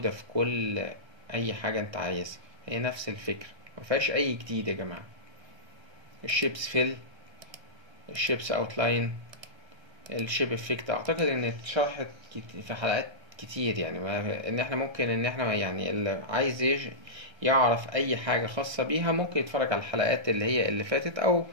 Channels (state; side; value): late; left; 1.3 ms